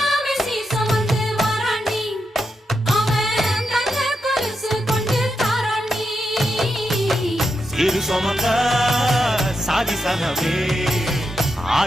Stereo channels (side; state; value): both; normal; correlation 0.85